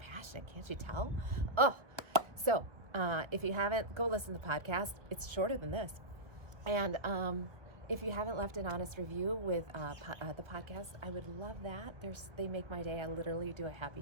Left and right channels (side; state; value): left; late; 1.0 ms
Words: can't you tell? So if you haven't, go listen to the podcast. It's shorter than this. And if you haven't left an honest review with the podcast, I would love that. They make my day. I literally do a happy